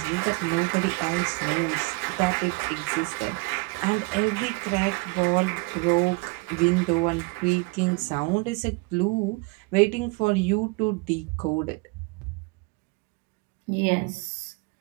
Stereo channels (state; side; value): quieter; left; 27.1 dB